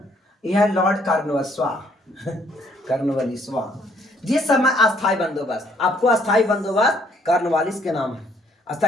यह लॉर्ड कार्नवालिस जिस समय अस्थायी बंदोबस्त, आपको अस्थायी बंदोबस्त कार्नवालिस के नाम है,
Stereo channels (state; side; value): normal; both; correlation 0.66